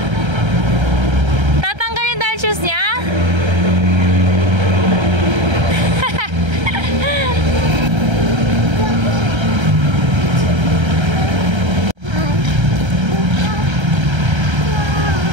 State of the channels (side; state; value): left; late; 1.3 ms